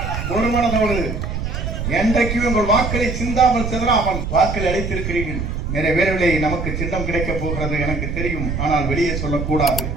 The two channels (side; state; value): right; noise; rumble, 3 dB below the sound